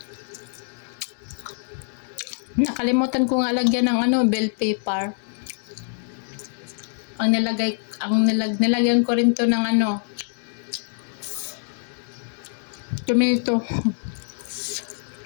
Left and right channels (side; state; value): right; silent; digital silence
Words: Nakalimutan ko nga lagyan ng bell pepper. Nilagyan ko rin to ng tomato.